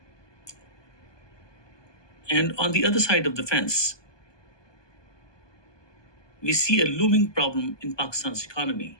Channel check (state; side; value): late; right; 1.2 ms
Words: And on the other side of the fence, we see a looming problem in Pakistan's economy.